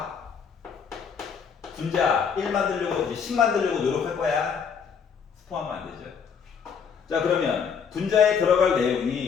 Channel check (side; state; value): right; quieter; 6.7 dB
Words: 분자 1 만들려고 이제 10 만들려고 노력할 거야. 스포하면 안 되죠. 자, 그러면 분자에 들어갈